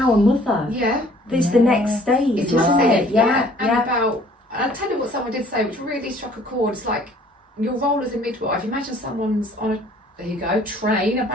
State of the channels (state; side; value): normal; both; correlation 0.56